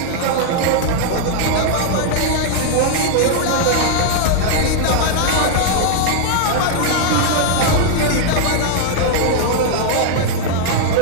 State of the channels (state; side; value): different; both; correlation 0.00